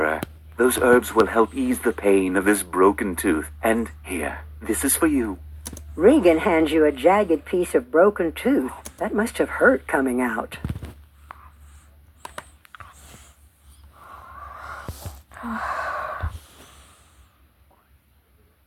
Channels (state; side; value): identical; both; correlation 1.00